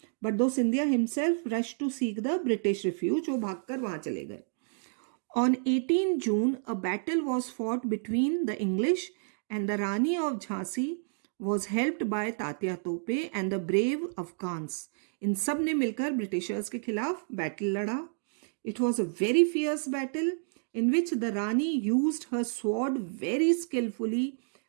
But though Scindia himself rush to seek the British refuge, वो भागकर वहां चले गए. On 18 June, a battle was fought between the English and the Rani of Jhansi was helped by Tatya Tope and the brave Afghans. इन सब ने मिलकर ब्रिटिशर्स के खिलाफ बैटल लड़ा. It was a very fierce battle in which the Rani used her sword very skillfully,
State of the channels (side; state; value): left; silent; digital silence